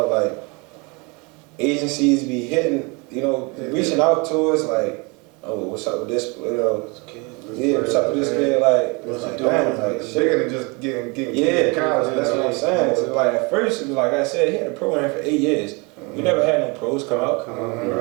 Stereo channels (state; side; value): quieter; left; 29.4 dB